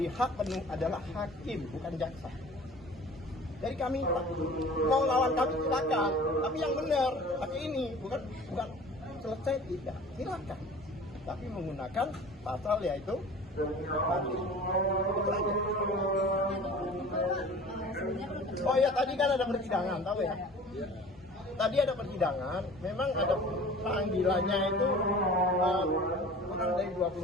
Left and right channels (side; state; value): both; normal; correlation 0.43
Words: hak penuh adalah hakim, bukan jaksa. Jadi kami mau lawan kami silakan, tapi yang benar pakai ini, bukan selesai tidak, silakan. Tapi menggunakan pasal yaitu oh ya, tadi kan ada persidangan, tahu ya? Tadi ada persidangan, memang ada panggilannya itu kurang dari